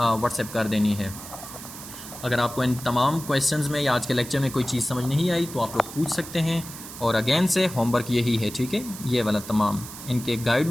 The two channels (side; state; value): right; noise; hiss, 13 dB below the sound